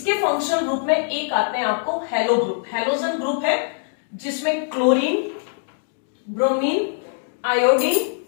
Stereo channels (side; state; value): right; silent; digital silence